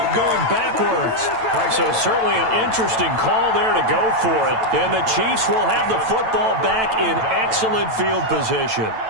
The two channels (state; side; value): late; left; 9.0 ms